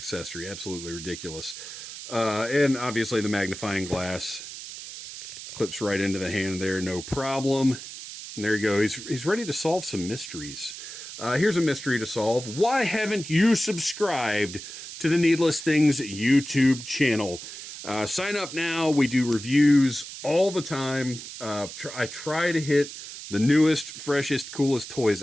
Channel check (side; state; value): right; noise; hiss, 11 dB below the sound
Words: Absolutely ridiculous. And obviously the magnifying glass clips right into the hand there, no problem. And there you go. He's ready to solve some mysteries. Here's a mystery to solve. Why haven't you subscribed to the Needless Things YouTube channel? Sign up now. We do reviews all the time. I try to hit the newest, freshest, coolest toys